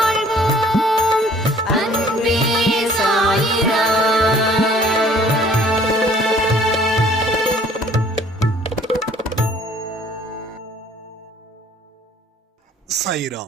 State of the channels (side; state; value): both; normal; correlation 0.56